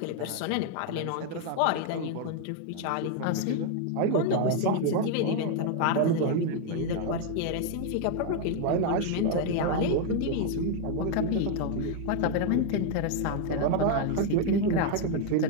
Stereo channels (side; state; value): both; different; correlation 0.00